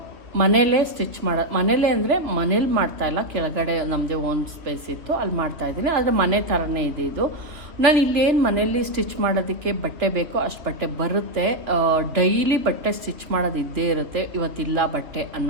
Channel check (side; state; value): left; late; 2.8 ms